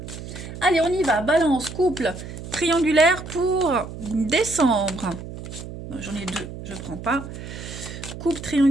Allez, on y va. Balance, couple, triangulaire pour décembre. J'en ai 2, je ne prends pas. Coupe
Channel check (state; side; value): noise; right; hum, 11 dB below the sound